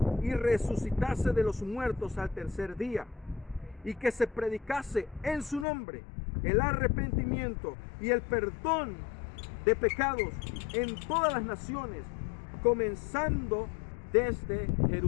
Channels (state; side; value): drops out; right; at 5.7 s